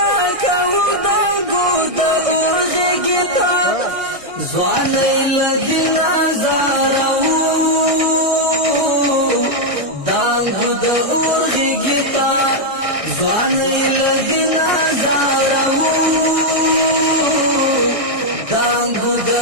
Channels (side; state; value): left; late; 1.6 ms